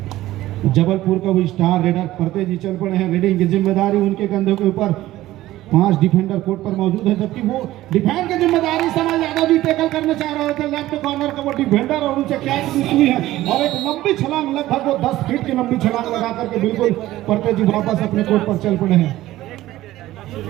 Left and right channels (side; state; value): left; quieter; 15.7 dB